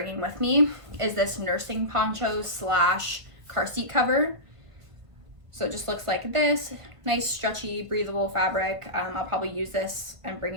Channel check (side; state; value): left; late; 1.5 ms